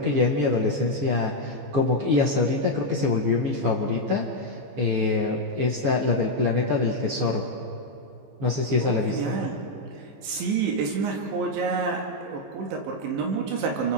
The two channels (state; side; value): late; left; 15 ms